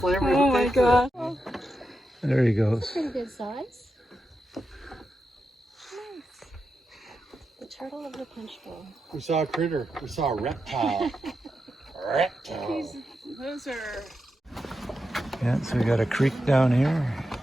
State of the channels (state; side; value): normal; both; correlation 0.88